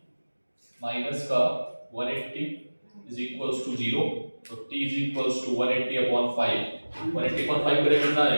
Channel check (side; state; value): both; inverted; correlation -1.00